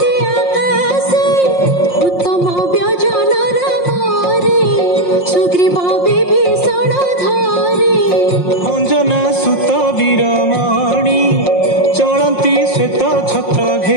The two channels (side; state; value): right; late; 5.6 ms